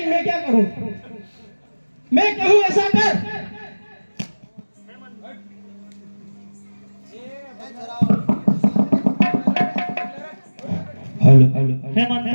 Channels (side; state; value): both; inverted; correlation -1.00